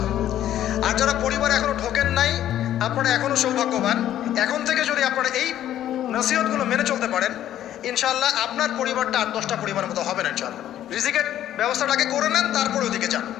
আর যারা পরিবারে এখনো ঢোকেন নাই, আপনারা এখনো সৌভাগ্যবান। এখন থেকে যদি আপনারা এই নসিহতগুলো মেনে চলতে পারেন, ইনশাআল্লাহ আপনার পরিবারটা 8-10টা পরিবারের মতো হবে না। ইনশাআল্লাহ রিজিকের ব্যবস্থাটাকে করে নেন, তারপরে ওদিকে যান।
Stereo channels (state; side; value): quieter; right; 11.9 dB